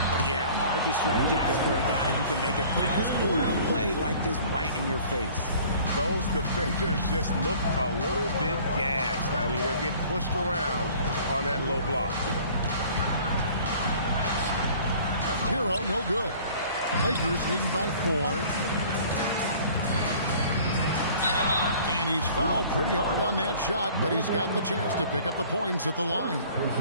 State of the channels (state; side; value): inverted; both; correlation -0.50